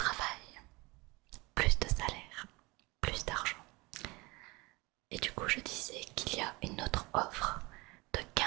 plus de salaire, plus d'argent. Et du coup, je disais qu'il y a une autre offre de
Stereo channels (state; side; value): quieter; left; 24.3 dB